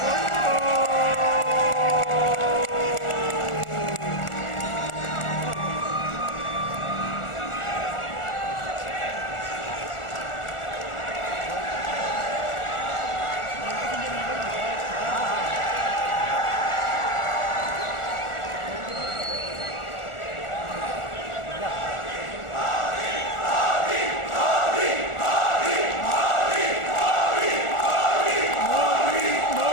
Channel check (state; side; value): late; right; 1.4 ms